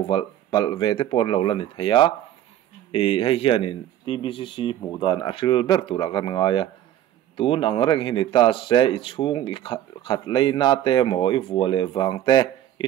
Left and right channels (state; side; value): quieter; left; 12.0 dB